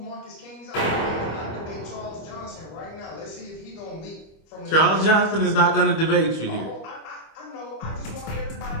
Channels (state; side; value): late; right; 25 ms